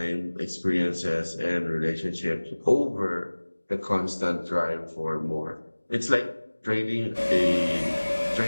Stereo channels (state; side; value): inverted; both; correlation -1.00